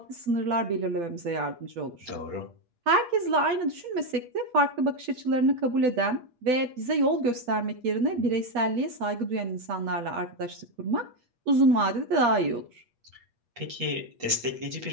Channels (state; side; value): late; left; 8.4 ms